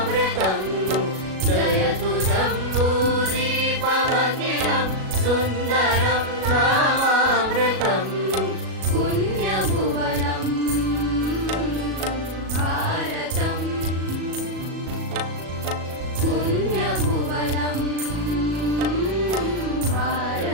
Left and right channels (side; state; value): left; late; 37 ms